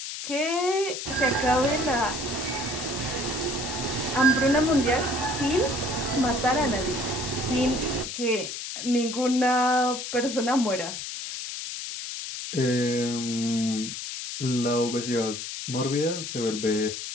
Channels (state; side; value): noise; left; hiss, 7 dB below the sound